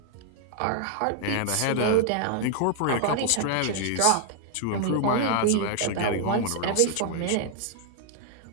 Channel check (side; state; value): both; different; correlation 0.00